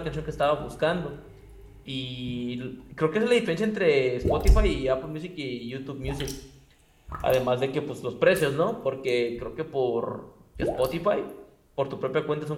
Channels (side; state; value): both; identical; correlation 1.00